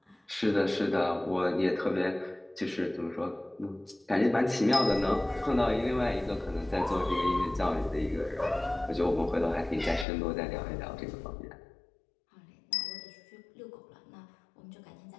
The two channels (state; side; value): drops out; right; at 10.1 s